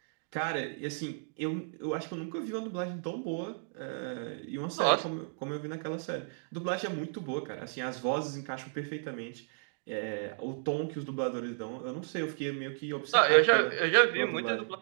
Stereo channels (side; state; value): left; silent; digital silence